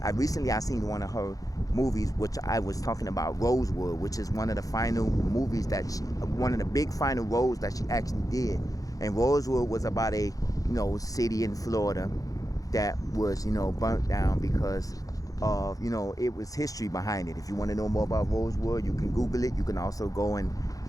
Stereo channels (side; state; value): right; late; 0.17 ms